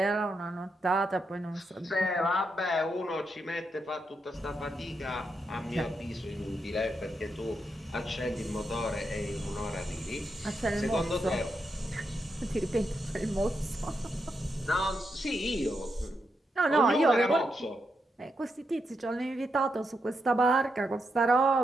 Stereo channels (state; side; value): normal; both; correlation 0.83